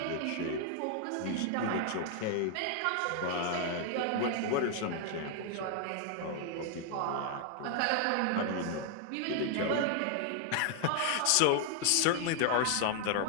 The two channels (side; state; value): both; different; correlation 0.00